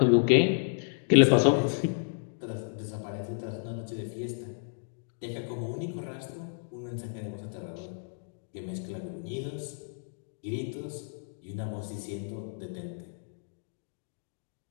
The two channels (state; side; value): silent; right; digital silence